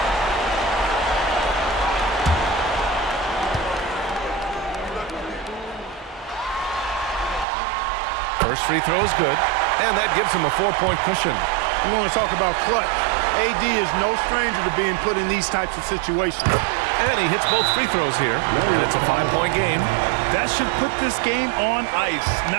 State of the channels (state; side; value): drops out; left; at 7.5 s